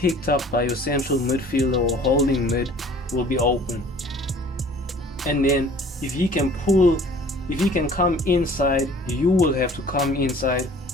up by your central midfielder or holding mid, will be open. And then if he can come inside, you will have to come inside,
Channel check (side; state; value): both; normal; correlation 0.50